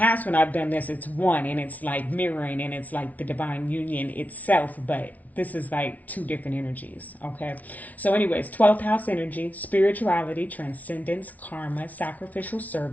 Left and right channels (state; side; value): late; right; 0.073 ms